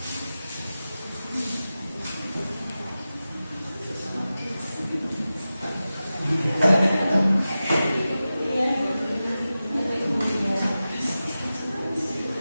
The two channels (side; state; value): both; inverted; correlation -0.94